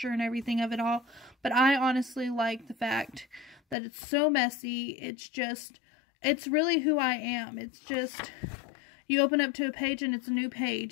and everything of it all, but I honestly like the fact that it's so messy. It's just, it's really who I am. It's just, you open up to a page and it's a new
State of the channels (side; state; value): right; drops out; at 3.8 s